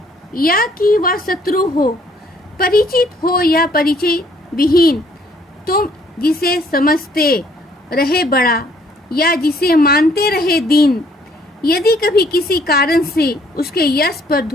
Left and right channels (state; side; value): normal; both; correlation 0.63